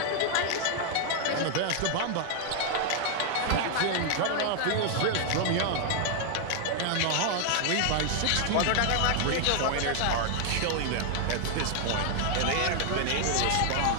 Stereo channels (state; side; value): different; both; correlation 0.00